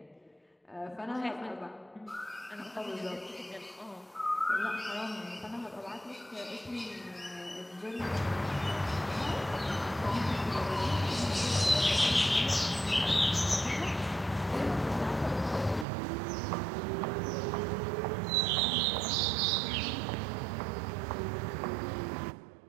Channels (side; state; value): left; drops out; at 15.9 s